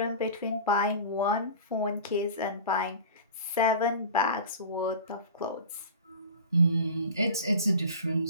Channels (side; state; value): both; inverted; correlation -0.36